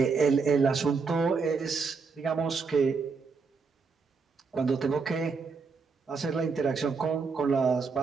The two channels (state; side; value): quieter; left; 4.9 dB